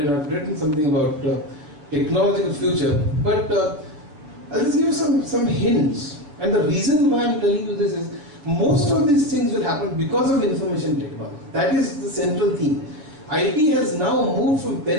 I've written something about technological future. But I'll just give you some hints. And the reason why I'm telling you this is most of these things will happen because of information technology. That is the central theme. IT has now moved from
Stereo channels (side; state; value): left; late; 6.8 ms